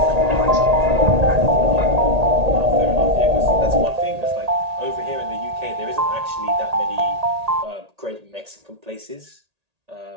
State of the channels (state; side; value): late; left; 1.8 ms